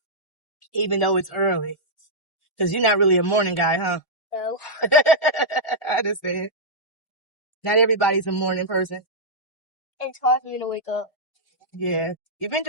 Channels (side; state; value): right; late; 1.9 ms